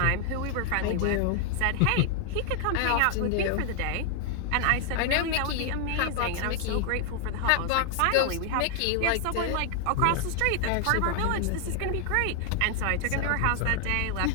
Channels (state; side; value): different; both; correlation 0.00